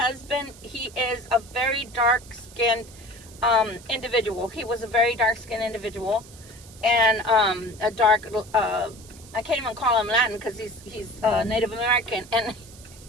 he is a very dark-skinned individual. He was a very dark-skinned individual, and a dark, I can't even call him Latin because he's Native American, and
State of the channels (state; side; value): noise; right; hiss, 21 dB below the sound